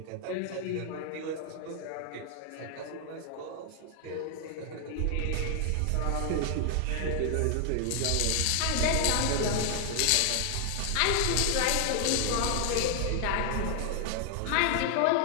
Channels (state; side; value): different; both; correlation 0.00